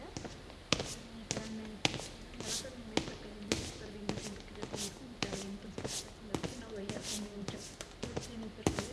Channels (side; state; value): both; identical; correlation 1.00